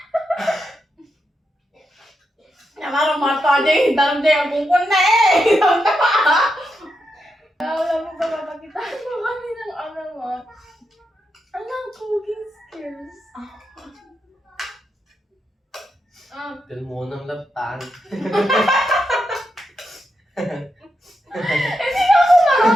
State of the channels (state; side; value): normal; both; correlation 0.85